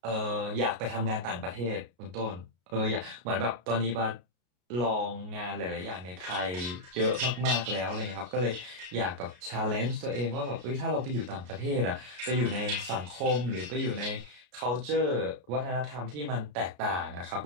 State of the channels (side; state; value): left; late; 33 ms